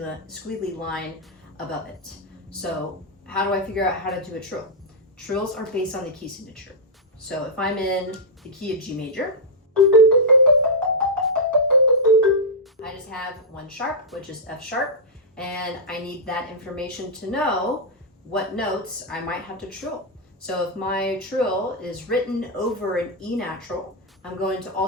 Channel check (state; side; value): normal; both; correlation -0.08